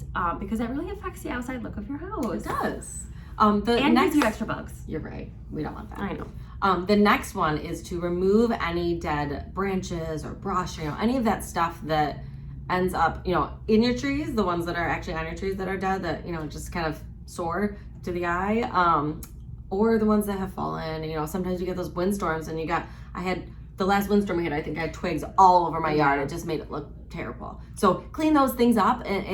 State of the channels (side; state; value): both; identical; correlation 1.00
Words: because that really affects the outside look of your house. It does. And gives you extra bugs. You're right. We don't want that. I know. The next one is to remove any dead branches or brush, any of that stuff that ends up, in your trees, the ones that are actually on your trees that are dead, that, just kind of sore to the eye, or the ones that have fallen. Sometimes you get those windstorms, and I had the last windstorm we had, I think I had twigs all over my yard. It just made it look terrible. So clean those things up, and